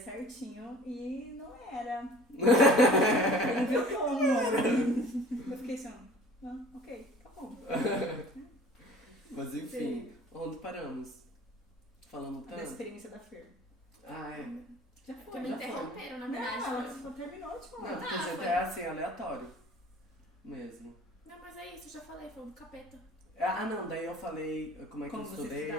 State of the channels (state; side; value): normal; both; correlation 0.47